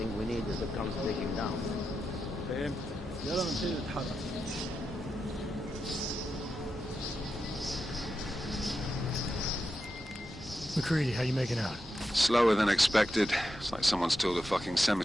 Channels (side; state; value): both; normal; correlation 0.88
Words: we need is the guns breaking down. فهمت. يلا نبتدي نتحرك. McCready, how you making out? Slower than expected. It's like someone's tilled a fucking